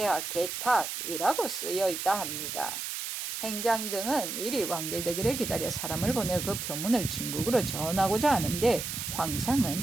개탁이라고 쓰여 있다 합니다. 행장 등은 이리 완결되기를 기다려 사람을 보내 그 표문을 중국으로 전하고자 하는데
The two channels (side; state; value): right; noise; hiss, 5 dB below the sound